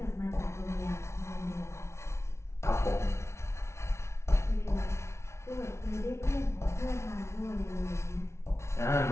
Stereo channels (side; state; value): right; late; 0.13 ms